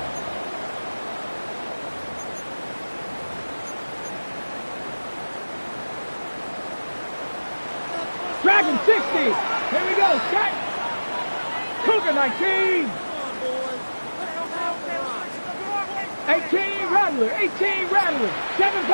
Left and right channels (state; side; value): inverted; both; correlation -1.00